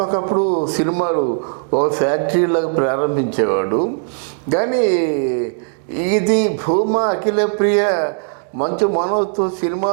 ఒకప్పుడు సినిమాలు ఓ ఫ్యాక్టరీలాగా ప్రారంభించేవాడు. కానీ ఇది భూమా అఖిల ప్రియ మంచు మనోజ్తో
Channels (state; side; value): silent; left; 67 dB below the other